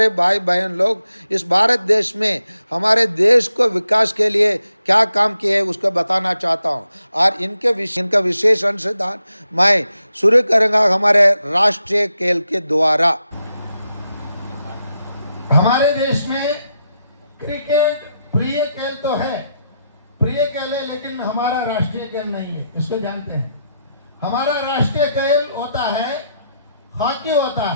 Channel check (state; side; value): inverted; both; correlation -0.83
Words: भाई बहन लोग इस भारत देश में हमारे देश को विकास के लिए क्या काम किए उसको बताना चाहता हूँ। और इनका विशेष अंशदान मैं शुरू करूँगा हमारे राष्ट्रीय खेल के द्वारा। हमारे देश में क्रिकेट प्रिय खेल तो है, प्रिय खेल है, लेकिन हमारा राष्ट्रीय खेल नहीं है, इसको जानते हैं। हमारा राष्ट्रीय खेल होता है हॉकी होता